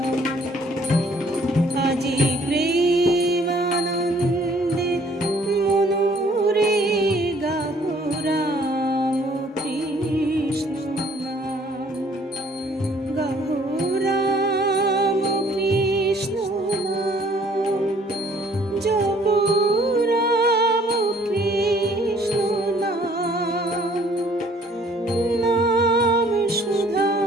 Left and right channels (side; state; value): both; normal; correlation 0.59